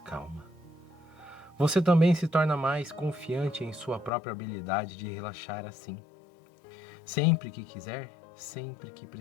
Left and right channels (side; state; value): right; drops out; at 4.1 s